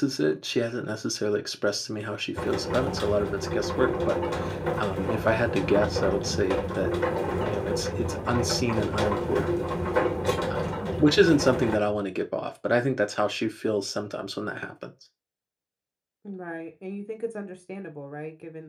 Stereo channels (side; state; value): both; identical; correlation 1.00